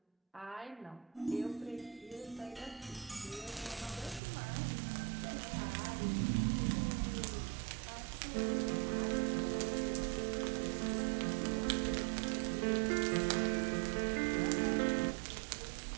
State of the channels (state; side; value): drops out; left; at 4.2 s